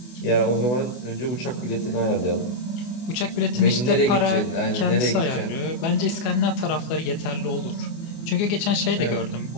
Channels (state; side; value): late; right; 24 ms